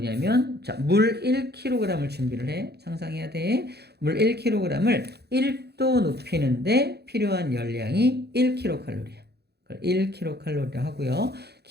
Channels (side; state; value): left; late; 0.48 ms